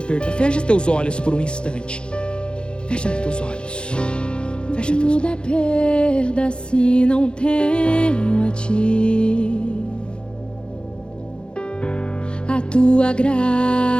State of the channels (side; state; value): right; late; 0.054 ms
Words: Fecha teus olhos por um instante. Fecha teus olhos. Fecha teus olhos. Tudo é perda se não tenho a ti. A tua